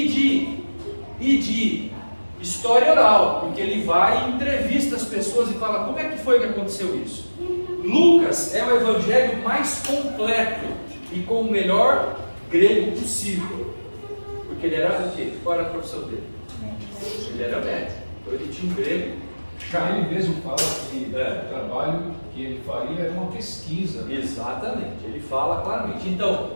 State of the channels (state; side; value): inverted; both; correlation -1.00